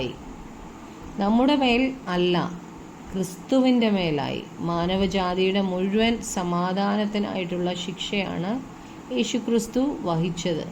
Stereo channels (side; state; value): both; identical; correlation 1.00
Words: നമ്മുടെ മേൽ അല്ല, ക്രിസ്തുവിൻ്റെ മേലായി. മാനവജാതിയുടെ മുഴുവൻ സമാധാനത്തിനായിട്ടുള്ള ശിക്ഷയാണ് യേശുക്രിസ്തു വഹിച്ചത്.